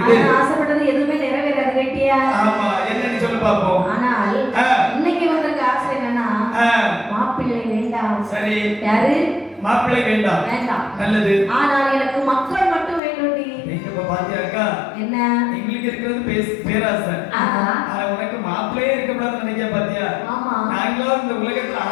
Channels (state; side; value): drops out; right; at 13.0 s